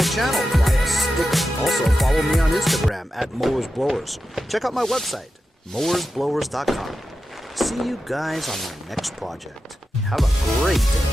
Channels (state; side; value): normal; both; correlation 0.91